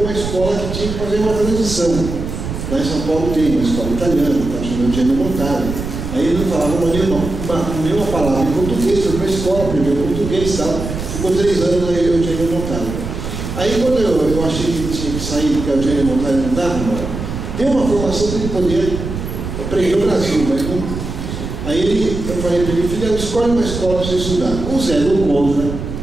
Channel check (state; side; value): noise; right; rumble, 6 dB below the sound